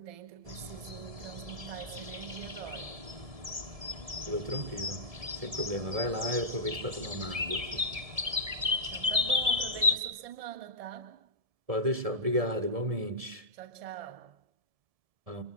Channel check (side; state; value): left; late; 1.7 ms